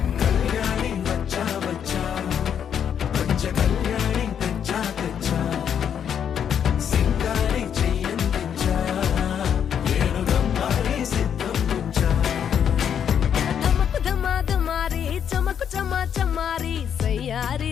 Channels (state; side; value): quieter; right; 8.4 dB